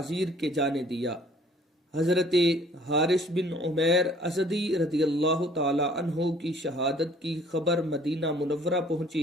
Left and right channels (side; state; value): both; normal; correlation 0.56